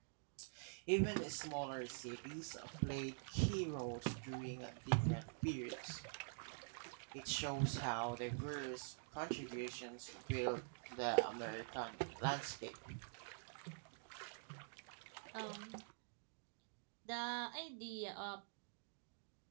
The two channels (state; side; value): silent; left; digital silence